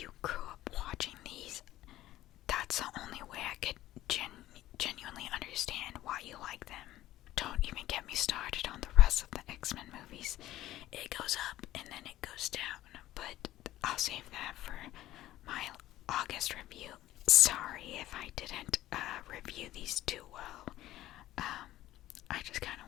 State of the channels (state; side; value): quieter; right; 14.8 dB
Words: grew up watching these, that's the only way I could genuinely understand why you like them. Don't even get me started on the rest of the X-Men movies. It goes up and then it goes down, but I'll save that for my August review. Sorry if I didn't review these too well. I just kind